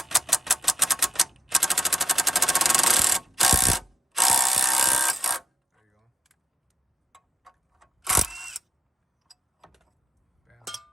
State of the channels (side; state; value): both; normal; correlation 0.76